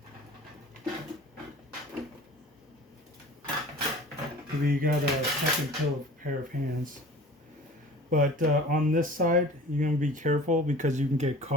Maybe you got a second pair of hands. But on this side, you're going to be careful because you can get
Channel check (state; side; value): normal; both; correlation 0.43